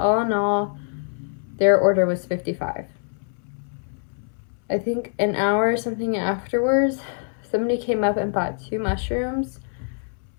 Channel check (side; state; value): right; silent; 61 dB below the other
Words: in all, their order was $55. I think an hour or something afterwards, somebody came up and bought 2 mushrooms.